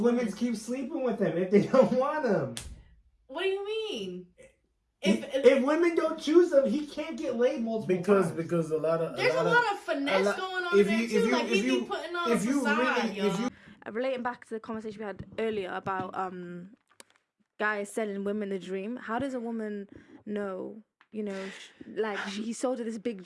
keep sleeping with them if they don't want them? What do you mean? If women don't choose them, he can't get laid multiple times. Because a lot of There's a lot of finesse going on there too. Like he be putting on a facade, y'all. Relating back to the conversation we had earlier about guys selling women the dream, how does a woman know, you know, he sold her this big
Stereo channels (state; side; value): identical; both; correlation 1.00